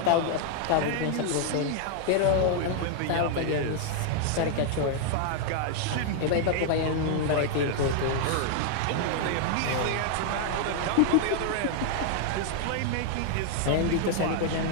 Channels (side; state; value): both; different; correlation 0.00